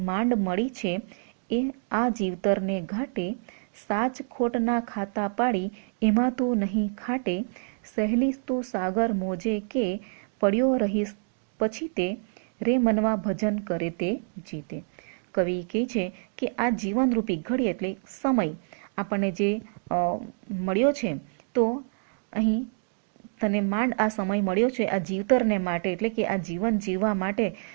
માંડ મળી છે એ આ જીવતરને ઘાટે, સાચ ખોટના ખાતા પાડી એમાં તું નહીં ખાટે, સહેલી તું સાગર મોજે કે પડ્યો રહીશ પછી તે, રે મનવા ભજન કરે તે જીતે. કવિ કહે છે કે આ જીવનરૂપી ઘડી એટલે સમય આપણને જે મળ્યો છે, તો અહીં તને માંડ આ સમય મળ્યો છે આ જીવતરને માટે, એટલે કે આ જીવન જીવવા માટે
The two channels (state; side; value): silent; left; digital silence